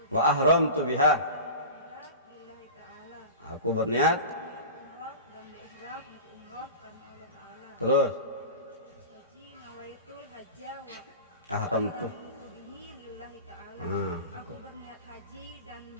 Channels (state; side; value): inverted; both; correlation -0.32